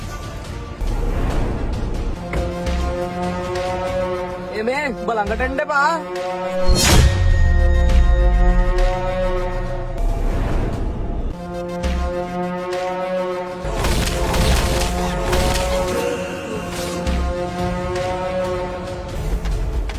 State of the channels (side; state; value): both; identical; correlation 1.00